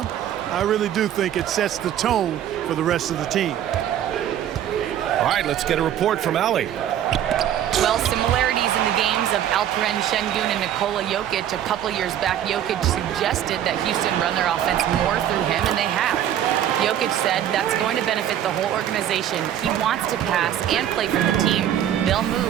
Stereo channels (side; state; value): left; quieter; 10.8 dB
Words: I really do think it sets the tone for the rest of the team. All right, let's get a report from Allie. Well, similarities in the games of Alperen Şengün and Nikola Jokic. A couple years back, Jokic suggested that Houston run their offense more through him, and they have. Jokic said that's going to benefit the whole organization. He wants to pass and play for the team. They'll